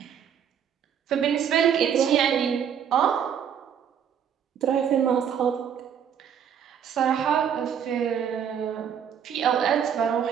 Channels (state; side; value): quieter; left; 8.3 dB